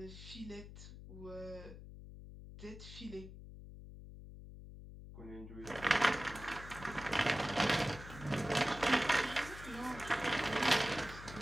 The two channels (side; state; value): left; noise; hum, 13 dB below the sound